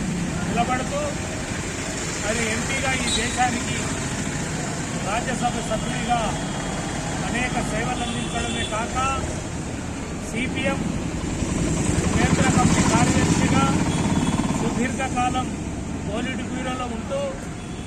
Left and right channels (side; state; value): both; identical; correlation 1.00